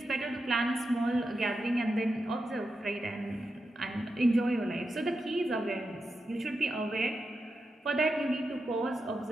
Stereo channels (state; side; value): normal; both; correlation 0.88